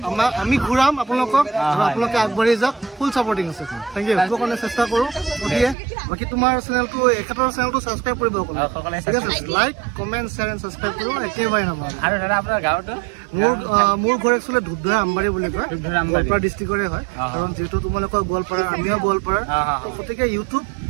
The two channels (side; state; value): left; drops out; at 5.8 s